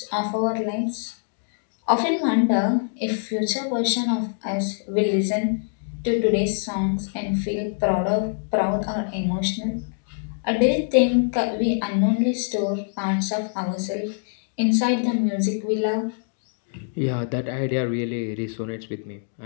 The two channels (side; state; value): right; silent; digital silence